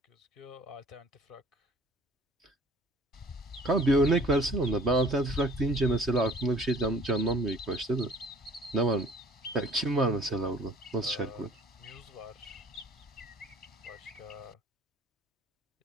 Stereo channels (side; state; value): both; normal; correlation 0.52